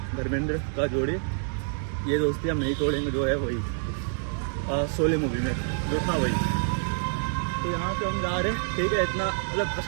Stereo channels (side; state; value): left; silent; digital silence